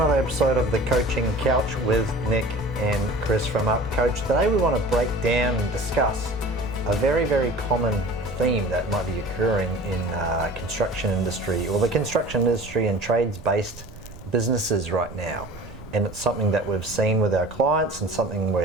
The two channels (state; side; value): noise; right; rumble, 18 dB below the sound